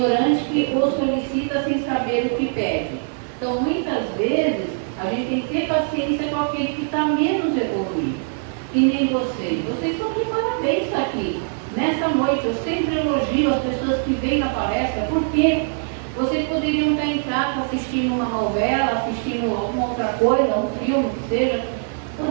que o solicita sem saber o que pede. Então, muitas vezes, a gente tem que ter paciência com aquele que está menos evoluído. E nem vocês. Vocês estão de parabéns aqui. Nessa noite, eu sempre elogio as pessoas que vêm na palestra, porque vocês poderiam estar em casa assistindo uma novela, assistindo alguma outra coisa, um filme, que seja.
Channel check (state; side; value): silent; left; digital silence